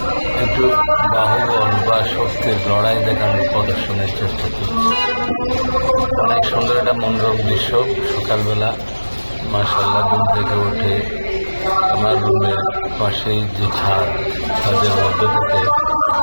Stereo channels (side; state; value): both; inverted; correlation -1.00